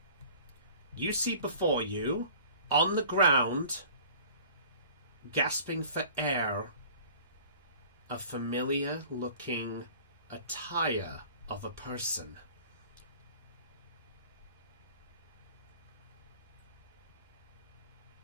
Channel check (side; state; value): both; inverted; correlation -0.47